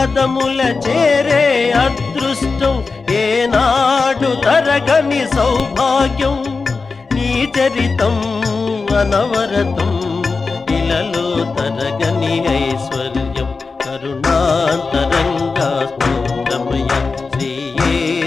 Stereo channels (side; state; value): right; quieter; 4.3 dB